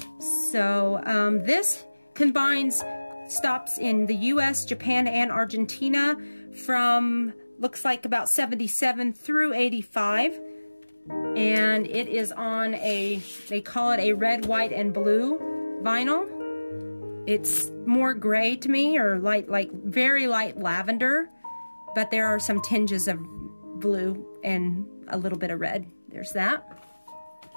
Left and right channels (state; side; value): inverted; both; correlation -1.00